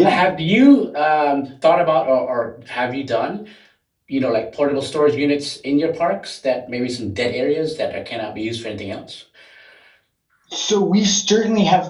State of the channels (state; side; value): identical; both; correlation 1.00